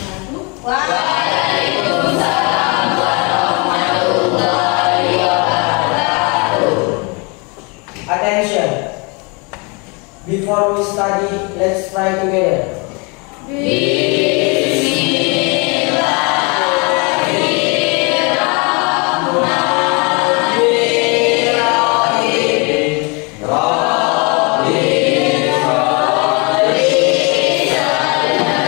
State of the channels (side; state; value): right; quieter; 30.8 dB